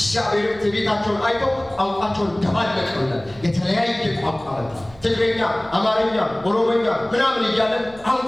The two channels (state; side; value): noise; right; hum, 23 dB below the sound